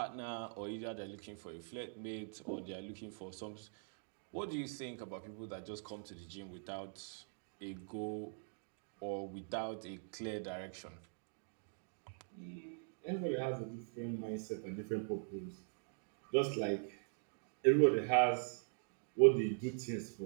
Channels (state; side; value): silent; left; digital silence